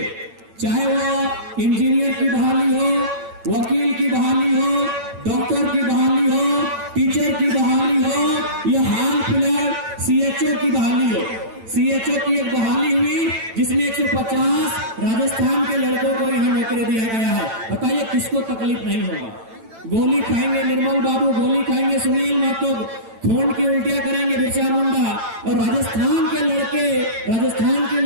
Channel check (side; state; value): left; late; 8.9 ms